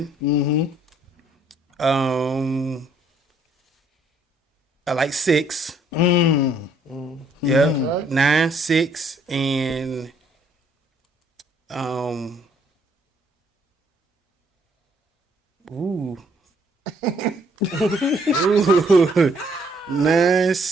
I like 6. Yeah, 9, 6, and ooh. 9,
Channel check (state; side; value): normal; both; correlation 0.65